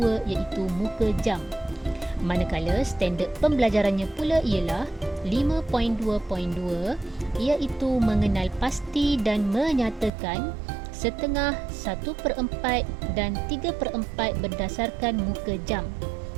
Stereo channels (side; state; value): left; drops out; at 10.1 s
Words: iaitu muka jam. Manakala standard pembelajarannya pula ialah 5.2.2 iaitu mengenal pasti dan menyatakan setengah, 1/4 dan 3/4 berdasarkan muka jam.